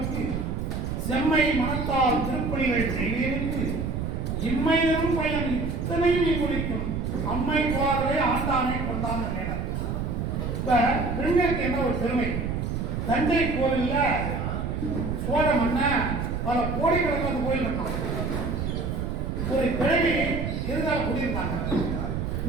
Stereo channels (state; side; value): noise; right; rumble, 2 dB below the sound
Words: செம்மை மனத்தால் திருப்பணிகள் செய்வதற்கு இம்மையிலும் பயன் இத்தனையும் இங்குளிக்கும் அம்மை குவாரே ஆண்டானை கொண்டான் நினைனர். இப்ப பெண்களுக்கு என்ன ஒரு பெருமை, தஞ்சை கோயில்ல சோழ மன்ன பல கோடிக்கணக்கில் அந்த கோயில் இருக்காங்க. ஒரு கிழவி இருந்தாலும் குடியிருந்தாங்க.